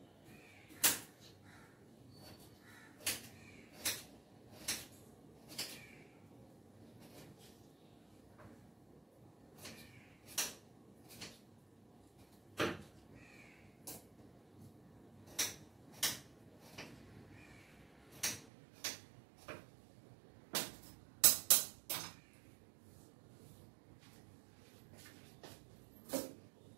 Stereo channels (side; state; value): left; drops out; at 18.4 s